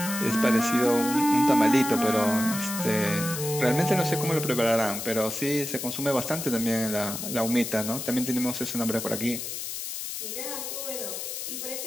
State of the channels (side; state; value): left; noise; hiss, 6 dB below the sound